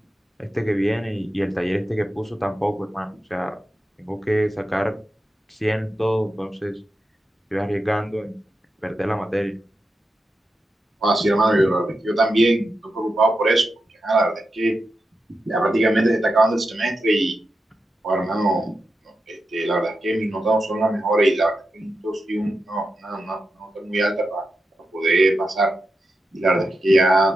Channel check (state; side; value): normal; both; correlation 0.89